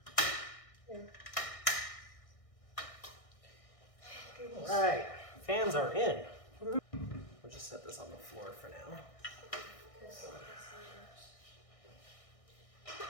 here. Alright, fans are in. We'll just set this on the floor for now.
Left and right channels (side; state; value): right; late; 1.6 ms